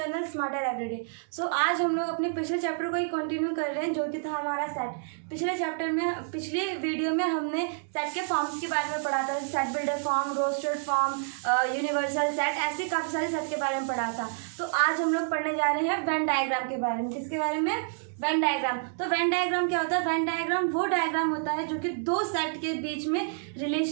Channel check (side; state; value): left; silent; digital silence